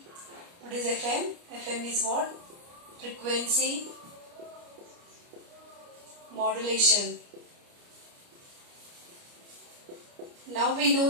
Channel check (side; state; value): left; late; 29 ms